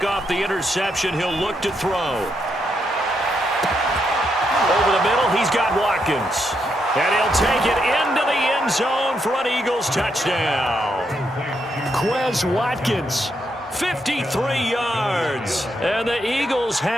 off the interception. He'll look to throw. Over the middle, he's got Watkins. And he'll take it into the end zone for an Eagles touchdown. Quez Watkins, 53 yards. And the Eagles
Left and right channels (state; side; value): normal; both; correlation 0.80